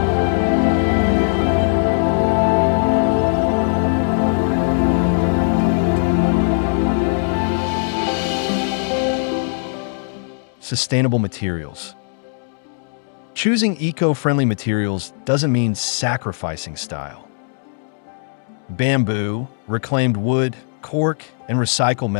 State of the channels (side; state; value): right; silent; digital silence